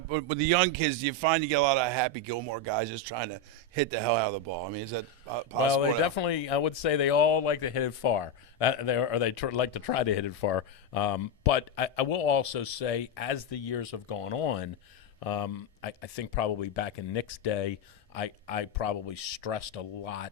with the young kids, do you find you get a lot of Happy Gilmore guys just trying to hit the hell out of the ball? I mean, is that possible? Well, they definitely, I would say they all like to hit it far. Like to try to hit it far. But I will also say, as the years have gone on, I think probably back in Nick's day, I probably stressed a lot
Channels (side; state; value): both; normal; correlation 0.07